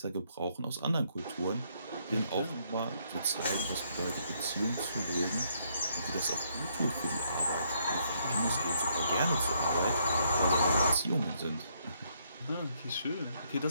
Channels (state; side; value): inverted; both; correlation -0.72